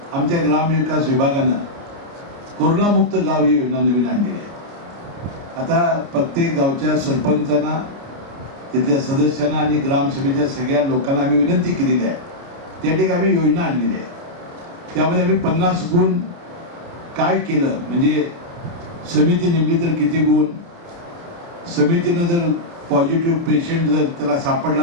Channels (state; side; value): late; left; 29 ms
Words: आमच्या ग्रामविकास विभागानं कोरोनामुक्त गाव ही योजना नवीन आणलेली आहे. आता प्रत्येक गावच्या सरपंचांना, तिथल्या सदस्यांना आणि ग्रामसभेच्या सगळ्या लोकांना आम्ही विनंती केलेली आहे. त्या ठिकाणी आम्ही योजना आणलेली आहे. त्यामध्ये आम्ही 50 गुण काय केलं, म्हणजे समिती नेमली तर किती गुण, समितीनं जर पॉझिटिव्ह पेशंट जर त्याला